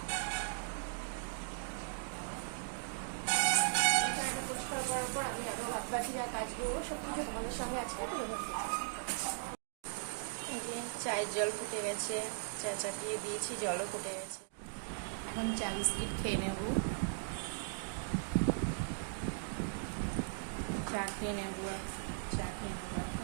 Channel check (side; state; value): left; silent; digital silence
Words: পরিষ্কার করার পর আমি আরো ভাত বাটিরা কাজগুলো সব কিছু তোমাদের সঙ্গে আজকে এই যে চায়ের জল ফুটে গেছে, চা চাপিয়ে দিয়েছি, জলও ফুটে গেছে। এখন চা বিস্কিট খেয়ে নেব, চা খেয়ে নেব